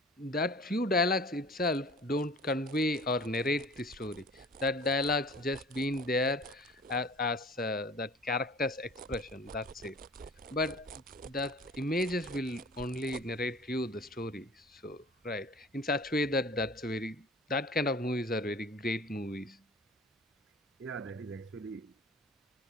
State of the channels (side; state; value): both; normal; correlation 0.45